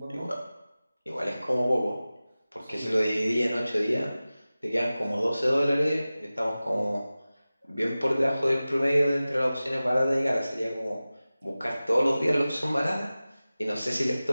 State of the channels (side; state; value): both; inverted; correlation -0.97